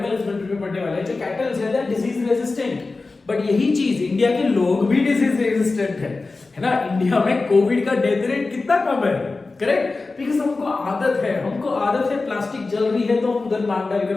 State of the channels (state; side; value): quieter; right; 3.7 dB